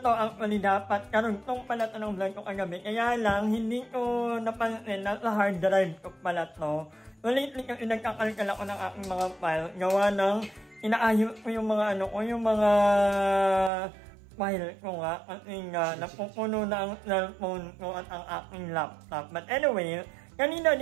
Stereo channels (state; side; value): drops out; left; at 13.7 s